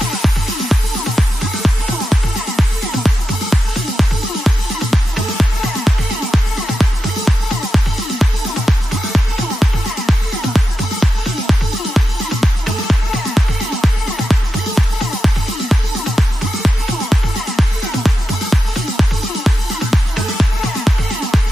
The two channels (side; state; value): both; normal; correlation 0.89